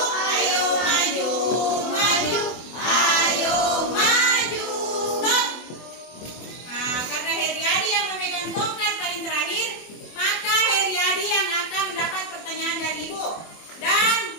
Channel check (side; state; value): right; late; 24 ms